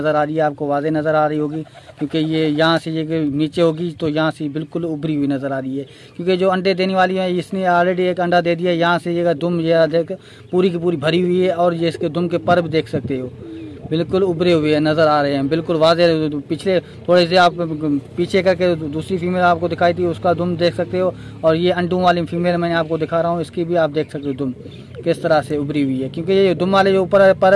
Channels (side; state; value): both; identical; correlation 1.00